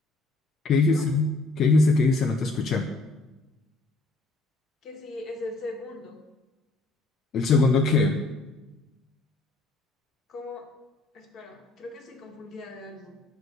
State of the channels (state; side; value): quieter; right; 3.1 dB